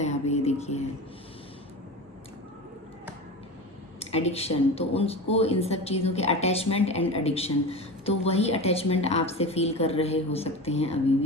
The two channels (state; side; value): normal; both; correlation 0.28